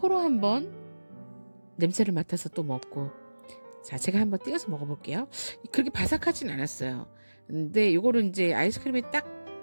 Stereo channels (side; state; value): both; inverted; correlation -1.00